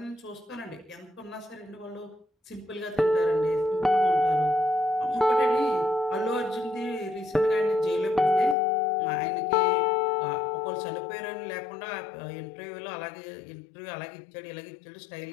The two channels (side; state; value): right; drops out; at 8.6 s